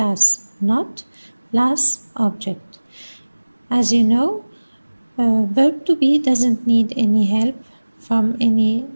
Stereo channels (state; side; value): inverted; both; correlation -1.00